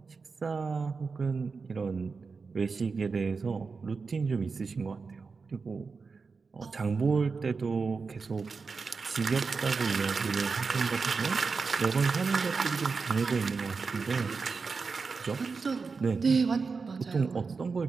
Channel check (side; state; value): left; quieter; 4.7 dB